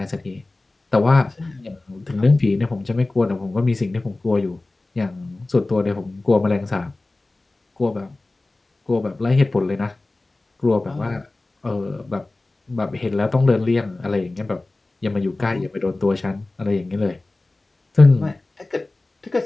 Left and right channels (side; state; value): right; quieter; 3.0 dB